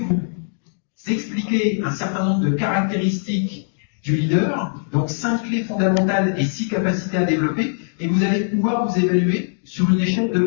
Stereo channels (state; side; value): silent; right; digital silence